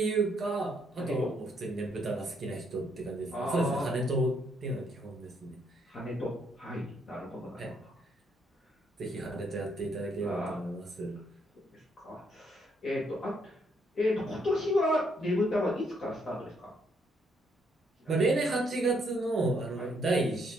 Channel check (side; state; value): both; normal; correlation 0.72